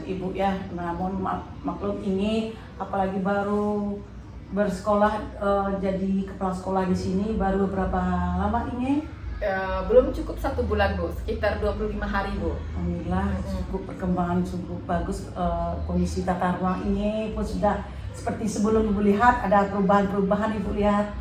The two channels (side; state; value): both; identical; correlation 1.00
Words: Ibu ya. Namun maklum Inge, apalagi baru bersekolah jadi kepala sekolah di sini baru berapa lama Inge? Belum cukup 1 bulan Bu, sekitar 25 hari Bu. Alhamdulillah cukup perkembangan cukup bagus, kondisi tata ruang ini pun sudah seperti sebelum Ibu lihat, ada perubahan-perubahan Ibu lihat.